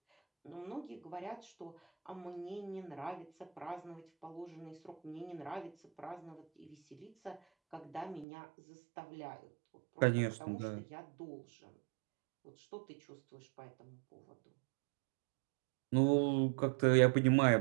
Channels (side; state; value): left; drops out; at 8.2 s